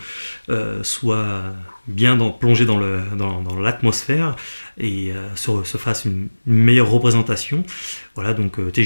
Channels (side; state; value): both; inverted; correlation -1.00